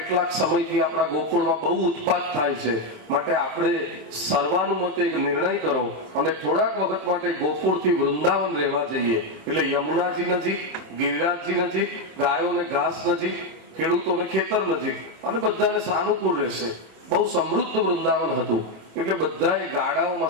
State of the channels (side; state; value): left; late; 27 ms